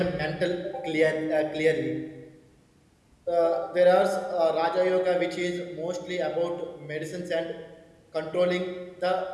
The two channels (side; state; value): both; identical; correlation 1.00